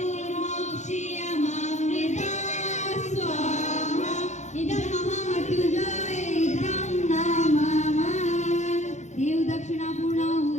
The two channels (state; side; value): late; right; 0.34 ms